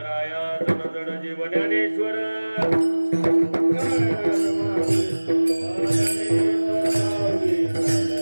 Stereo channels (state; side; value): inverted; both; correlation -1.00